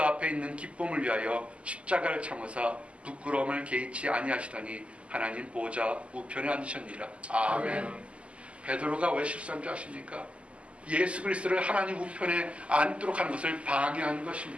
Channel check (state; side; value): late; left; 0.058 ms